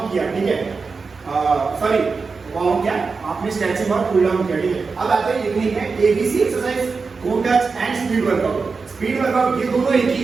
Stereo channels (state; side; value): quieter; left; 4.7 dB